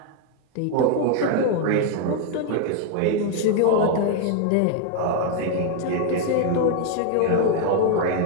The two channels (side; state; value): both; different; correlation 0.00